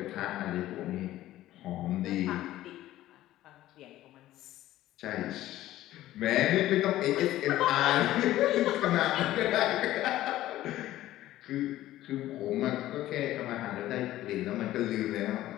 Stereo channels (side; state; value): right; quieter; 14.6 dB